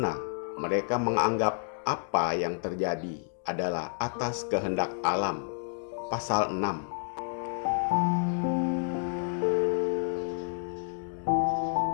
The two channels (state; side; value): silent; right; digital silence